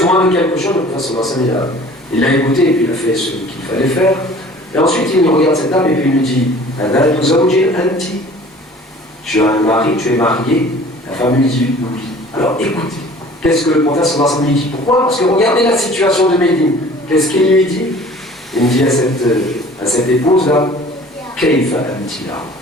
de quelque chose, le prophète sallallahu alayhi wa sallam, il l'a écouté et puis il a fait ce qu'il fallait faire. Et ensuite, il regarde cette dame et puis il lui dit tu as un mari, tu es marié. La femme lui dit oui. Alors écoutez, qu'est-ce que le prophète sallallahu alayhi wa sallam lui dit? Pourquoi? Parce que regardez la situation de Médine. Qu'est-ce qu'il lui dit? Il dit à à cette épouse-là, Kayfa amtila,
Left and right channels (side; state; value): both; normal; correlation 0.48